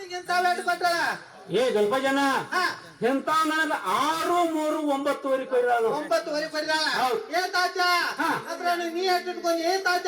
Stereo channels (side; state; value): both; identical; correlation 1.00